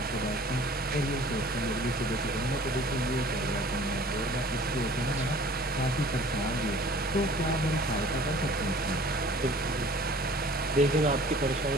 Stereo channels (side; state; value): both; normal; correlation 0.49